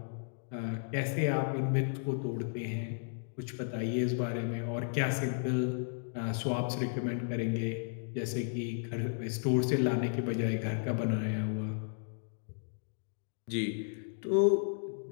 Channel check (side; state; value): right; silent; digital silence